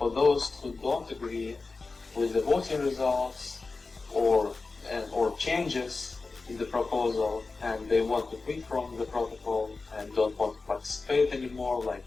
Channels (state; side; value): quieter; right; 3.9 dB